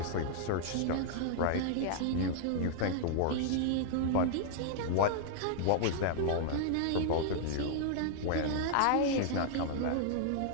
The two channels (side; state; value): both; different; correlation -0.01